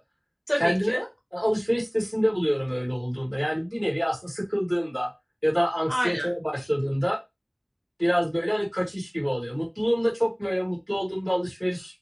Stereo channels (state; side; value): identical; both; correlation 1.00